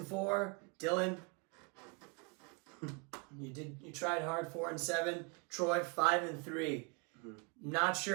Dylan, you tried hard. 4-7. Troy 5-3. Not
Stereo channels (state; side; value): quieter; left; 32.1 dB